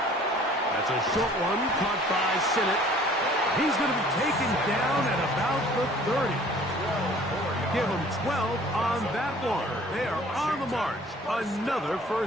That's a short one, caught by Sinnott. He's going to be taken down at about the 30. Give him 12 on that one. They are on the march. Another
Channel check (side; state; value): both; normal; correlation 0.52